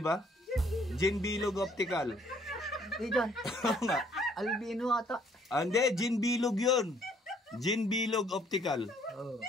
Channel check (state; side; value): normal; both; correlation 0.63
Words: ba? Jean Bilog Optical. Hindi dyan. Albino ata. Hindi, Jean Bilog yun. Jean Bilog Optical.